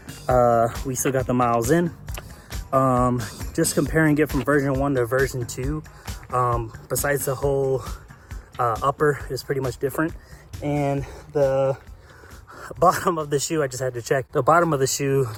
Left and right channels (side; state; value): both; identical; correlation 1.00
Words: we still got the miles in. Just comparing it from version 1 to version 2, besides the whole upper is pretty much different, and the bottom of the shoe, I just had to check. The bottom of the shoe,